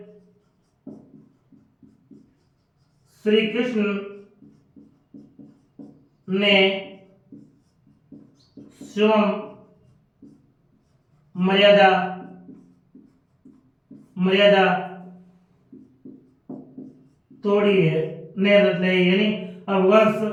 श्री कृष्ण ने स्वयं मर्यादा, मर्यादा तोड़ी है, ने नहीं, यानी अब भगवान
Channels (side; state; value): both; identical; correlation 1.00